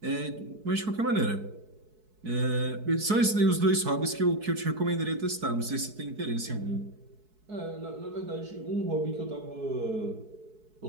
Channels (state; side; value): late; left; 4.7 ms